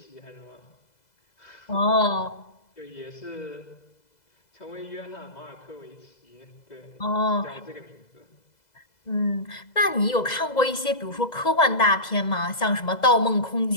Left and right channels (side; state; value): right; late; 2.0 ms